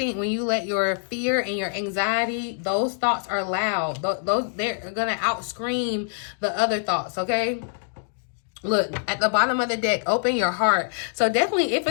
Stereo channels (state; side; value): silent; right; digital silence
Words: you let your fear and your anxiety, those thoughts are loud. They're going to outscream the other thoughts, okay? Look, at the bottom of the deck, open your heart. So definitely